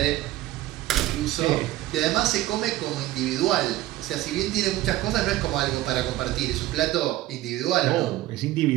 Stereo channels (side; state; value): left; quieter; 15.7 dB